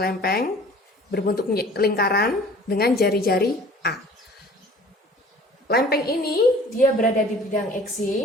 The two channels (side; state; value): both; normal; correlation 0.48